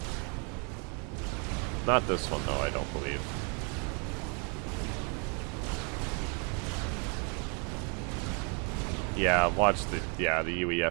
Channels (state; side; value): quieter; left; 35.7 dB